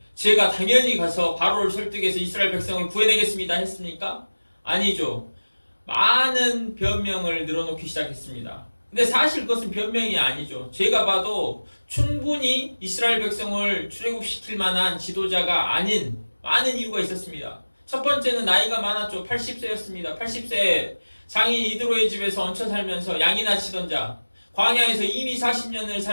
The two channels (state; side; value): inverted; both; correlation -1.00